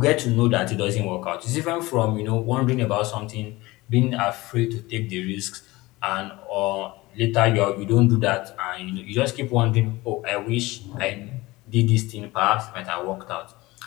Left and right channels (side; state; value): right; quieter; 20.6 dB